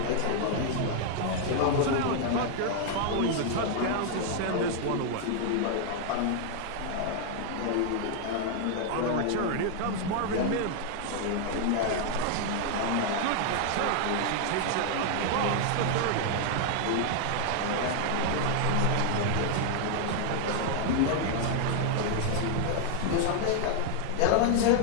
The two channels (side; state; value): both; different; correlation 0.00